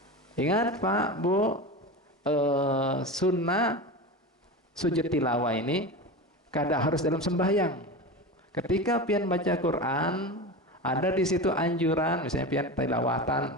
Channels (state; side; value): normal; both; correlation 0.26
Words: Ingat Pak, Bu, sunnah sujud tilawah ini kada harus dalam sembahyang. Ketika pian baca Quran, ada di situ anjuran, misalnya pian